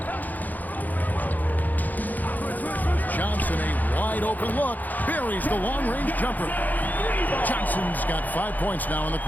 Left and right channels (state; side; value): late; right; 0.083 ms